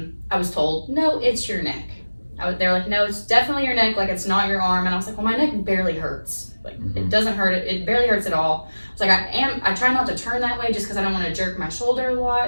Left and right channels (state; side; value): inverted; both; correlation -1.00